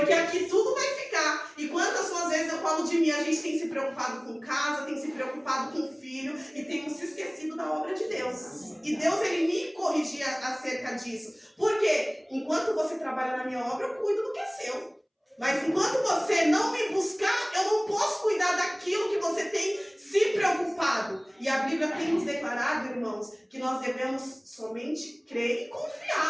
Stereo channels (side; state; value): both; identical; correlation 1.00